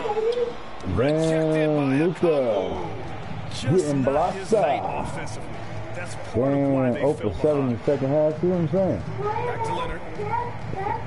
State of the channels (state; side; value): identical; both; correlation 1.00